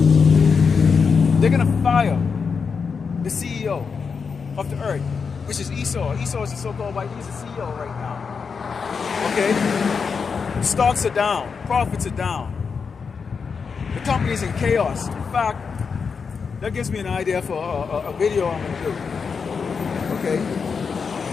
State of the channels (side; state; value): right; quieter; 5.6 dB